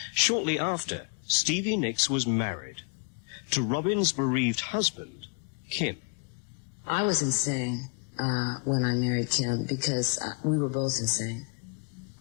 Shortly after, Stevie Nicks was married to Robin's bereaved husband, Kim. I was insane when I married Kim, because we were both insane.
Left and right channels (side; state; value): right; quieter; 34.6 dB